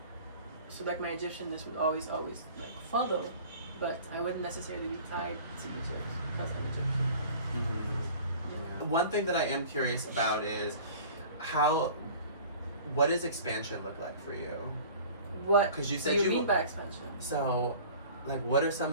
So like my Egyptianness would always like follow, but I wouldn't necessarily be tied to Egypt because I'm Egyptian. You know? One thing that I am curious about is what does expansion look like for you? What 'Cause you said do you you- mean by expansion? So, like, what are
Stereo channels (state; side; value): inverted; both; correlation -0.45